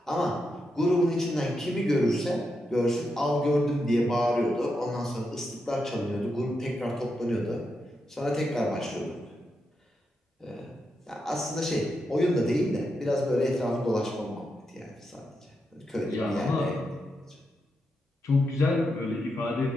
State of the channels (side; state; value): both; normal; correlation 0.85